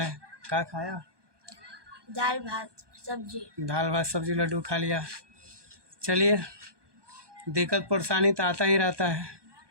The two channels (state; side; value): late; left; 1.2 ms